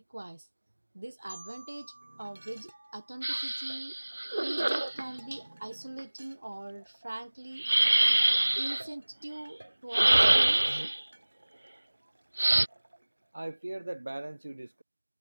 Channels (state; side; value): inverted; both; correlation -1.00